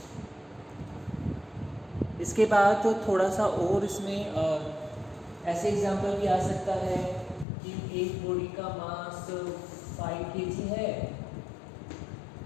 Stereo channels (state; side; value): drops out; right; at 7.5 s